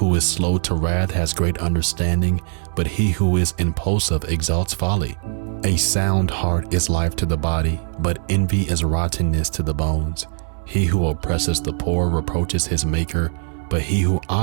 is slow to wrath has great understanding, but he who is impulsive exalts folly. A sound heart is life to the body, but envy is rottenness to the bones. He who oppresses the poor reproaches his maker, but he who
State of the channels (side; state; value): left; silent; digital silence